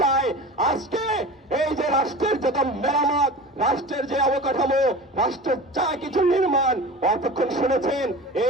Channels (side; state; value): both; normal; correlation 0.35